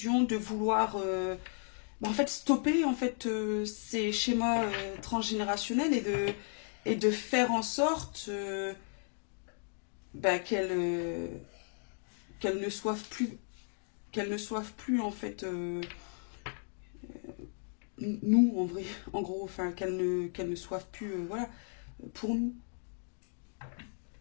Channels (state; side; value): silent; right; 55 dB below the other